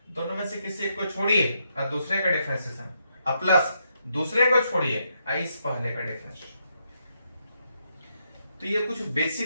दोनों में से किसी एक को छोड़िए और दूसरे का डिफरेंशिएशन, अब प्लस दूसरे को छोड़िए इस पहले का डिफरेंशिएशन। तो ये कुछ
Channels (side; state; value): both; inverted; correlation -0.79